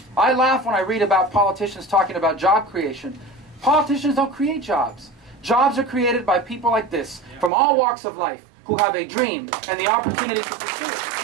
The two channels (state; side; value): drops out; left; at 7.5 s